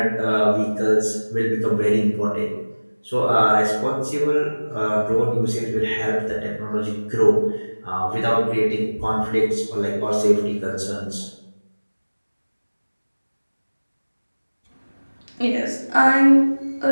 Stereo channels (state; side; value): inverted; both; correlation -1.00